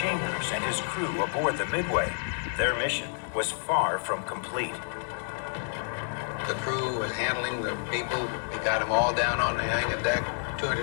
and his crew aboard the Midway, their mission was far from complete. The crew was handling the people. We got them all down on the hangar deck.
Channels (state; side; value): silent; right; digital silence